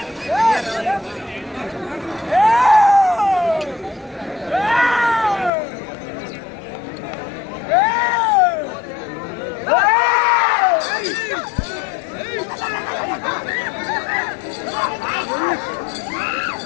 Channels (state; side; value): drops out; right; at 5.5 s